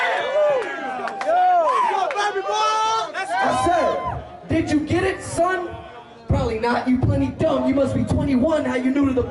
Yo, baby boy! I said, did you get it, son? Probably not, you plenty dumb. You must be 21, how you new to the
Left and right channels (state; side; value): identical; both; correlation 1.00